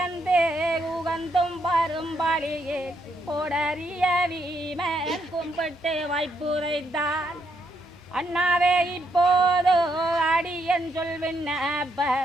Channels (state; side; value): normal; both; correlation 0.76